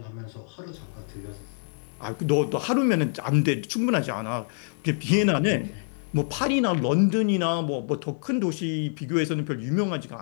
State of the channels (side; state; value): right; silent; digital silence